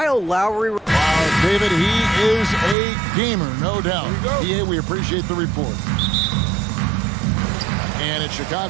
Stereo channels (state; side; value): drops out; left; at 2.8 s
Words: Lowry. Wow, David, he is a gamer, no doubt. Yeah, we appreciate the report. And it's